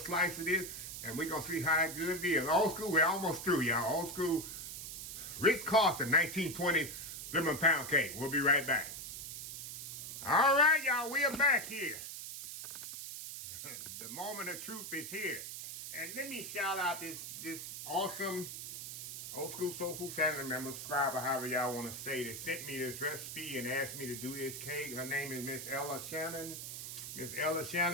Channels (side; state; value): right; noise; hiss, 8 dB below the sound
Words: of this, and we're gonna see how good it is. Old school, we're almost through, y'all. Old school RITZ CARLTON 1920 lemon pound cake. We'll be right back. All right, y'all, we are back here. The moment of truth is here. And let me shout out this awesome Old School Soul Food family member, subscriber, however y'all want to say, that sent me this recipe and asked me to do this cake. Her name is Miss Ella Shannon. Miss Ella